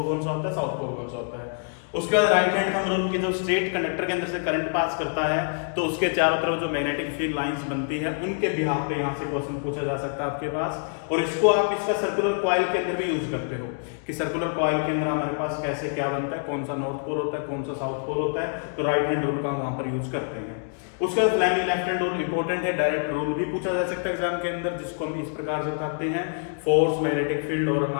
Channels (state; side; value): silent; right; 61 dB below the other